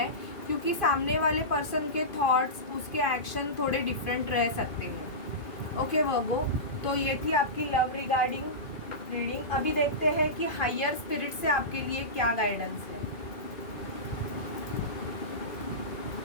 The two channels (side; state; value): right; late; 2.5 ms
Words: क्योंकि सामने वाले पर्सन के थॉट्स, उसके एक्शन थोड़े डिफरेंट रह सकते हैं। ओके वर्गो, तो ये थी आपकी लव रिगार्डिंग रीडिंग। अभी देखते हैं कि हायर स्पिरिट से आपके लिए क्या गाइडेंस है।